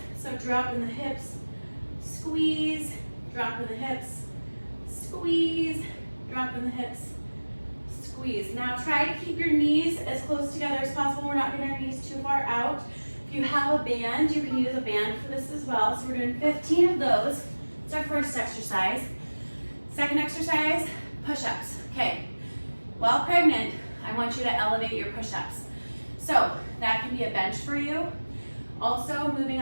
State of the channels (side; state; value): both; inverted; correlation -1.00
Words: So drop in the hips, squeeze, drop in the hips, squeeze, drop in the hips, squeeze. Now try to keep your knees as close together as possible. We're not getting our knees too far out. If you have a band, you can use a band for this as well. So we're doing 15 of those. It's our first exercise. Second exercise, push-ups. Okay, while pregnant, I want you to elevate your push-ups. So that can be a bench for you. Also, moving